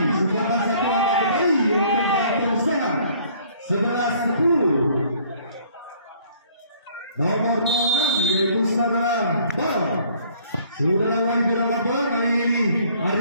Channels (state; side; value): inverted; both; correlation -0.58